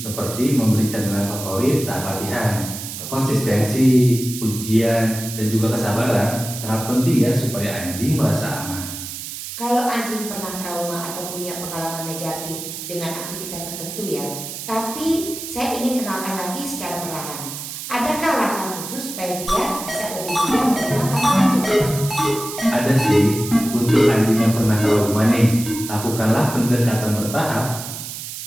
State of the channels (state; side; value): noise; right; hiss, 8 dB below the sound